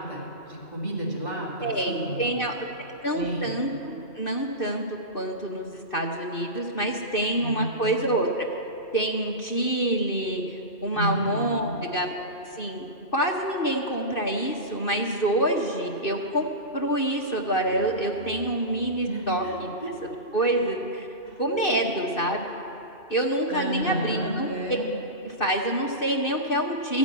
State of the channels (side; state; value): right; late; 2.6 ms